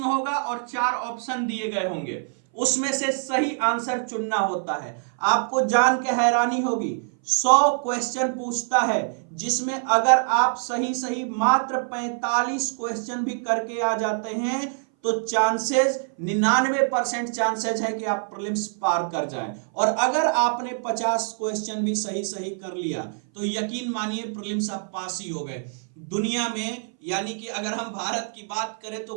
होगा और 4 ऑप्शन दिए गए होंगे, उसमें से सही आंसर चुनना होता है। आपको जान के हैरानी होगी, 100 क्वेश्चन पूछता है जिसमें अगर आप सही मात्र 45 क्वेश्चन भी करके आ जाते हैं तो चांसेस 99% चांसेस है कि आप प्रीलिम्स पार कर जाएं, और अगर आपने 50 क्वेश्चन भी सही कर लिया तो यकीन मानिए प्रीलिम्स आप पास ही हो गए। दुनिया में यानी कि अगर हम भारत की बात करें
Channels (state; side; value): silent; left; 59 dB below the other